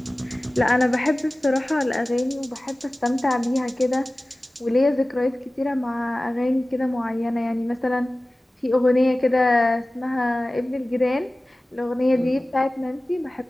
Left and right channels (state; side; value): normal; both; correlation 0.97